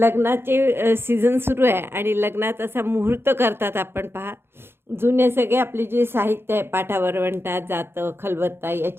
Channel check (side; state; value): left; late; 0.11 ms